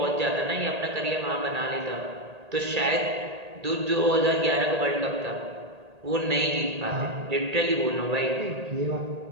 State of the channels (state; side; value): late; left; 1.8 ms